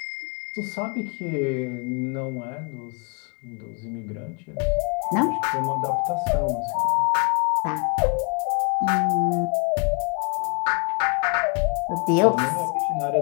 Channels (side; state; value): right; quieter; 33.8 dB